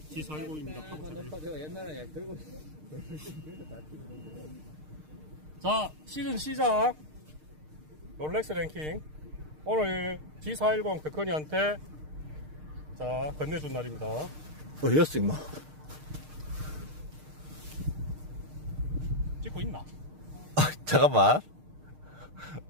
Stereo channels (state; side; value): late; left; 6.5 ms